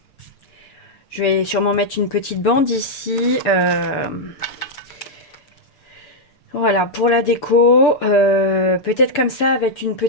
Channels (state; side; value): late; right; 6.9 ms